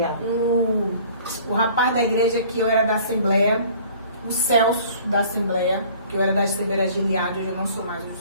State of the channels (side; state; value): both; inverted; correlation -0.51